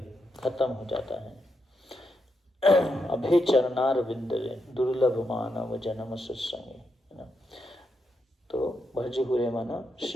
खत्म हो जाता है। अभय चरणार विंदरे दुर्लभ मानव जन्म सत्संगे, है ना। तो भज हुए माना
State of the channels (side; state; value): both; normal; correlation 0.83